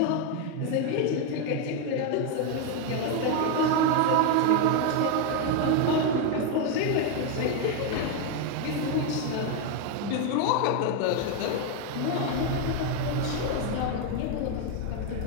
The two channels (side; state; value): both; different; correlation 0.01